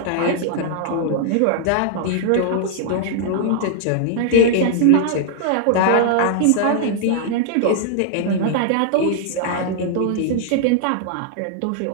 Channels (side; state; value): both; different; correlation -0.01